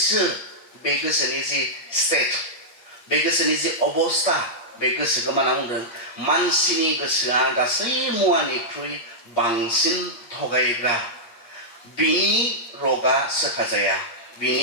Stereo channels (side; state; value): right; late; 8.4 ms